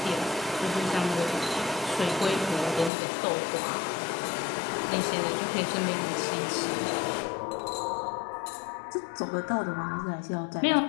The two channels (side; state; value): right; drops out; at 2.9 s